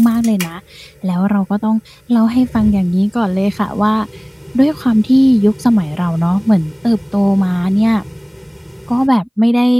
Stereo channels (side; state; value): both; identical; correlation 1.00